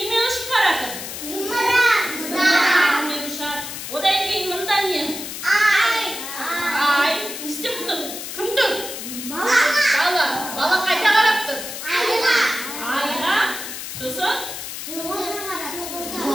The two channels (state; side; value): noise; left; hiss, 8 dB below the sound